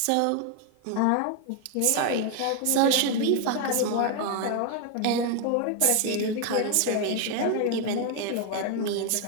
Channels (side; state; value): both; different; correlation 0.01